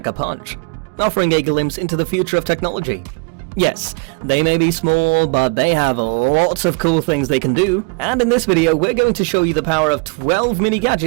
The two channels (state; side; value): quieter; left; 34.5 dB